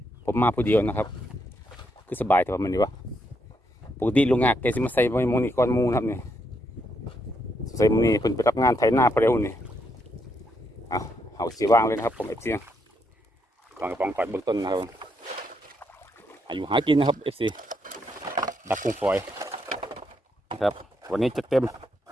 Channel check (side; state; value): both; normal; correlation 0.78